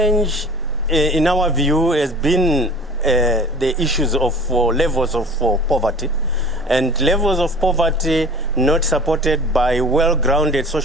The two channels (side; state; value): both; normal; correlation 0.43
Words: in our view, has been the issues of levels of poverty. And levels of poverty not supported by well-grounded